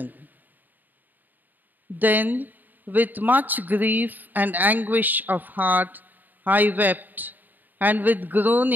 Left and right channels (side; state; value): left; late; 0.087 ms